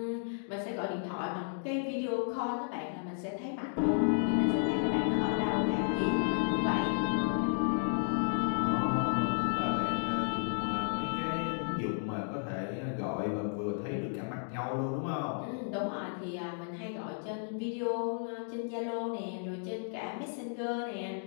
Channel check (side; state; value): right; silent; digital silence